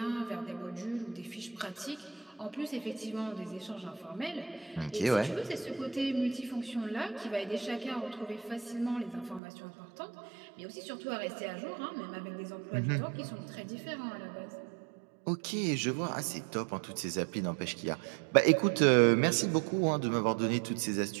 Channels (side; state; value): left; drops out; at 9.4 s